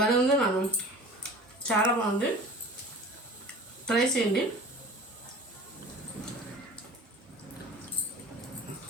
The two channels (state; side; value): normal; both; correlation 0.41